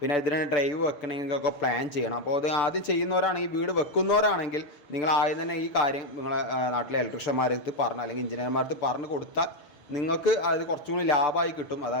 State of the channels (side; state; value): right; late; 6.8 ms